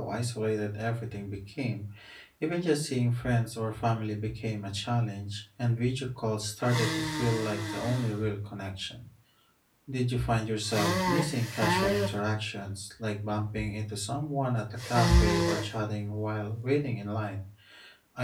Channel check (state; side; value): identical; both; correlation 1.00